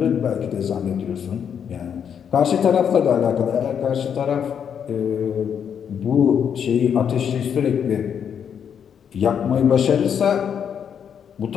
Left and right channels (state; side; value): quieter; right; 7.9 dB